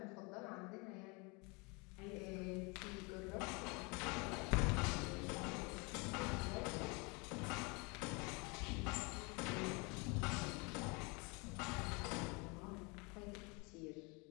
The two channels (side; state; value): right; quieter; 29.5 dB